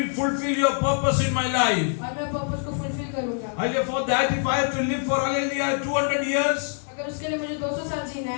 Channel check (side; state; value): right; silent; 62 dB below the other